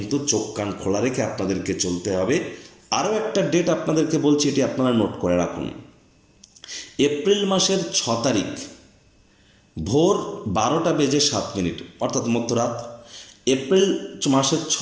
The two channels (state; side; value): identical; both; correlation 1.00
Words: চোখ কান খোলা রেখে আপনাদেরকে চলতে হবে। আরও একটা ডেট আপনাদেরকে বলছি, এটি আপনারা নোট করে রাখুন। এপ্রিল মাসের 6 তারিখ ভোর 12:07 অর্থাৎ মধ্যরাত। এপ্রিল মাসের